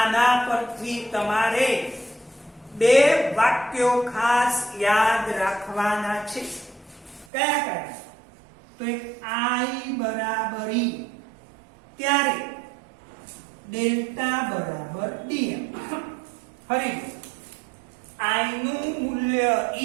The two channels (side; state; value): left; drops out; at 7.2 s